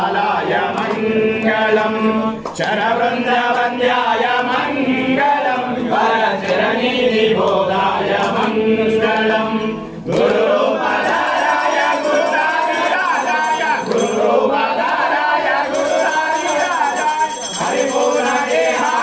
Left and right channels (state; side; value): identical; both; correlation 1.00